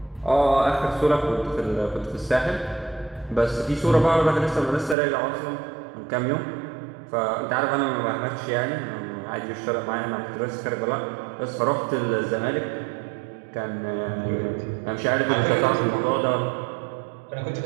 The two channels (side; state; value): left; drops out; at 5.0 s